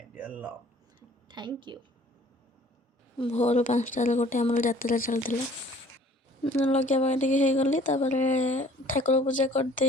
dear love. Thank you. भोर 5टार गोटे आमर यात्रा चलता लगे टे गली ठाकुर पूजा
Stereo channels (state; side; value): normal; both; correlation 0.53